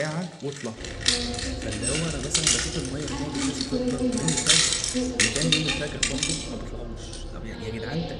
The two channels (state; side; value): identical; both; correlation 1.00